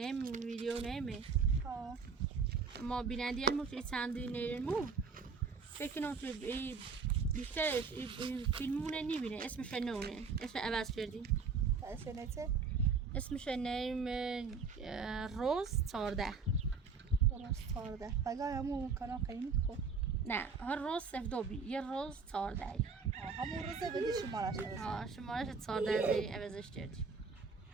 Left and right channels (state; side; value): quieter; left; 5.2 dB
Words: ویدیو نیمه ما بینندی علمو که چندی نیرمو فکر کنم که بیشترش فیلمونه نمیبینه اسمش نونه اسم عوض کردیم اسنته اسمش نیم روز 14 روز 14 بگای همون کانال قیمت خوب نه هر روز 02 یه روز 14 همون روزه بدی شمارش نوشت شمارش 14 زیری عوضش کردیم